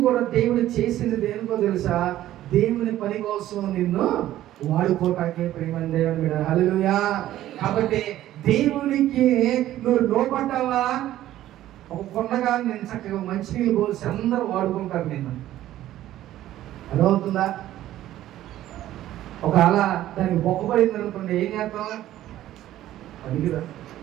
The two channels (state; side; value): quieter; left; 13.6 dB